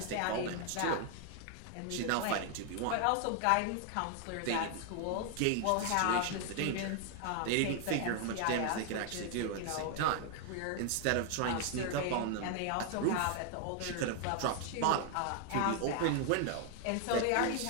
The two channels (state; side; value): different; both; correlation 0.00